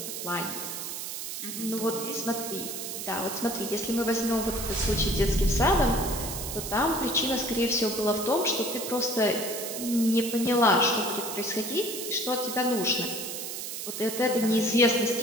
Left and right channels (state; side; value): noise; right; hiss, 6 dB below the sound